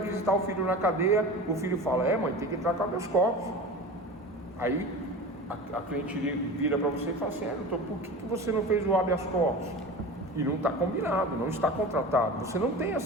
o filho na cadeia, o filho fala, mãe, tem que entrar com habeas corpus. Aí a cliente vira para você e fala assim, doutor, por que você não fez o habeas corpus? E não está combinado, não está contratado, você não tem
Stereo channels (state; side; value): normal; both; correlation 0.33